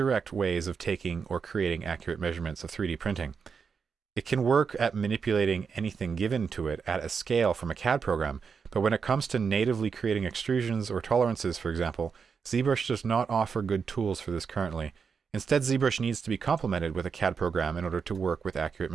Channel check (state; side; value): quieter; left; 5.9 dB